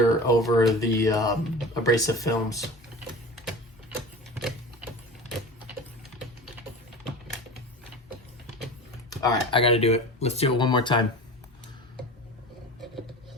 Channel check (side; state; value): both; normal; correlation 0.34